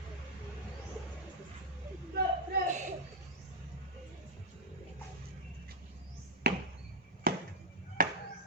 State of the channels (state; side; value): normal; both; correlation 0.01